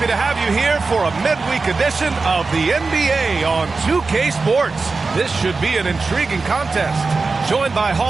to have you here for a midweek edition of the NBA on 2K Sports. This should be an intriguing contest. Joined by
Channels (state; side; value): quieter; left; 4.1 dB